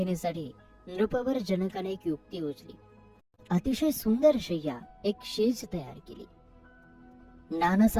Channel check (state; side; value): identical; both; correlation 1.00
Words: नृपवर जनकाने एक युक्ती योजली. अतिशय सुंदर शय्या एक शेज तयार केली. नाना